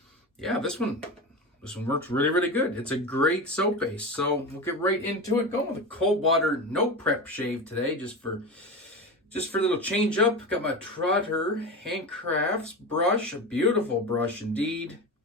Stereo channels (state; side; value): normal; both; correlation 0.24